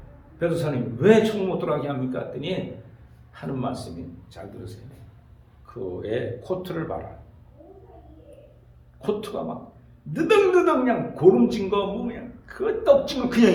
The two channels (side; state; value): both; identical; correlation 1.00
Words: 베드로사님 왜 천국 못 들어가게 합니까? 했더니 하는 말씀이 잘 들으세요. 그의 코트를 봐라. 코트가 막 느덕느덕 그냥 고름진 거 뭐 그냥 그 떡진 거 그냥